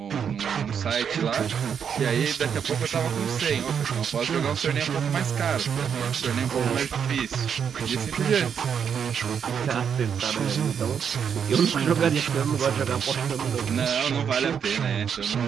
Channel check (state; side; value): quieter; left; 7.5 dB